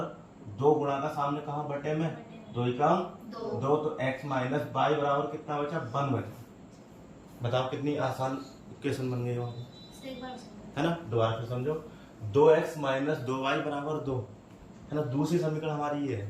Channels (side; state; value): both; identical; correlation 1.00